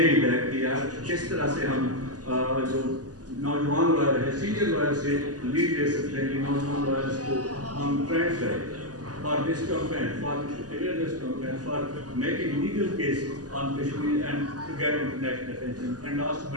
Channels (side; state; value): left; late; 0.68 ms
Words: that کہ یار کس طرح سے ہم جو نوجوان لائر ہے, سینئر لائر سے لیڈ لے سکتے ہیں کہ نوجوان لائرس کو ہم ٹرینڈ کریں for this campaign, for awareness campaign, for making legal case on Kashmir and to get international attention. And last